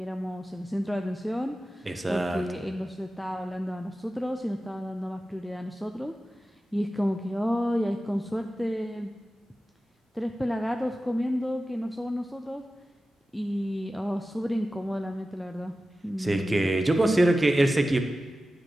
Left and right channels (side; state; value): both; normal; correlation 0.94